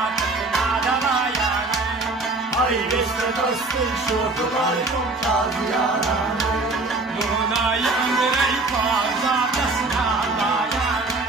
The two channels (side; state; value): left; quieter; 3.3 dB